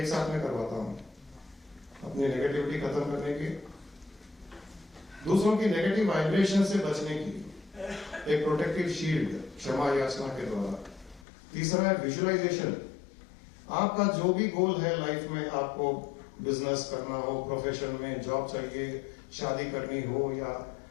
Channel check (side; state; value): right; drops out; at 11.2 s